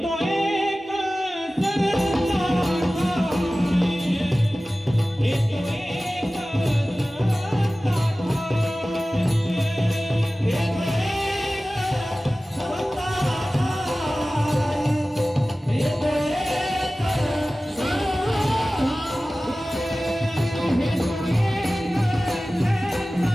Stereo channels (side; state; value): both; normal; correlation 0.96